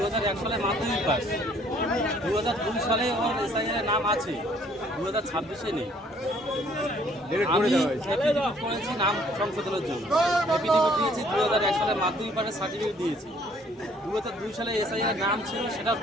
সালে মাধ্যমিক পাস, 2002 সালে ওর এসআইআর নাম আছে, 2026-এ নেই। আমি এফিডেভিট করেছি নাম সংশোধনের জন্য, এফিডেভিট দিয়েছি 2001 সালে মাধ্যমিক পাসের সার্টিফিকেট দিয়েছি, 2002 সালে এসআইআর নাম ছিল সেটা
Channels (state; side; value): normal; both; correlation 0.61